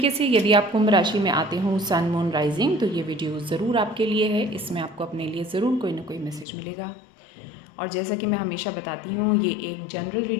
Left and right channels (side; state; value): right; drops out; at 6.5 s